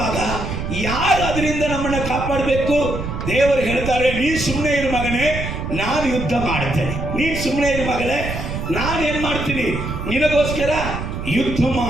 ಯಾರು ಅದರಿಂದ ನಮ್ಮನ್ನು ಕಾಪಾಡಬೇಕು? ದೇವರು ಹೇಳ್ತಾರೆ, ನೀನು ಸುಮ್ಮನೆ ಇರು ಮಗನೇ, ನಾನು ಯುದ್ಧ ಮಾಡ್ತೇನೆ. ನೀನು ಸುಮ್ಮನೆ ಇರು ಮಗಳೇ, ನಾನೇನು ಮಾಡ್ತೀನಿ, ನಿನಗೋಸ್ಕರ ಯುದ್ಧ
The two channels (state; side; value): noise; right; rumble, 5 dB below the sound